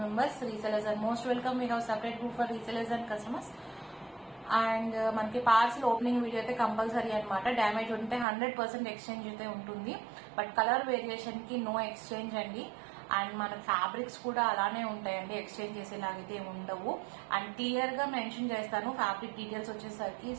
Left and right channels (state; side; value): drops out; left; at 8.2 s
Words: members. Resellers are most welcome. We have separate group for resellers and customers. And మనకి parcel opening video అయితే compulsory అనమాట. Damage ఉంటే 100% exchange అయితే ఉంటుంది, but colour variation కి no exchange అండి. And మన fabrics కూడా అలానే ఉంటాయండి, ఎక్స్చేంజ్ చేసేలాగైతే ఉండవు. అండ్ క్లియర్ గా మెన్షన్ చేస్తాను ఫ్యాబ్రిక్ డీటెయిల్స్ వచ్చేసరికి.